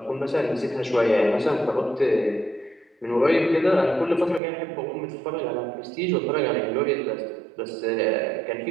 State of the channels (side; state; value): left; drops out; at 4.4 s